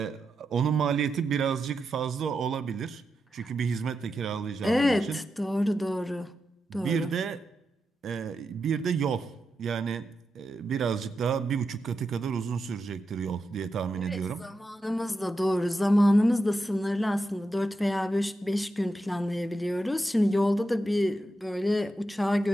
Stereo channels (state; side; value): normal; both; correlation 0.87